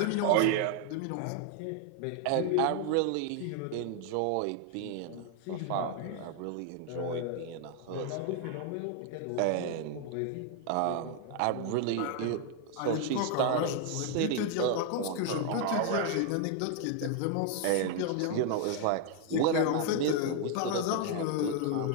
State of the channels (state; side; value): different; both; correlation 0.00